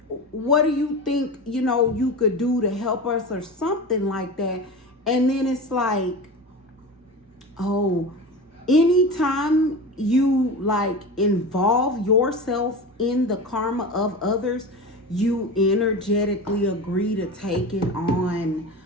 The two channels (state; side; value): normal; both; correlation 0.28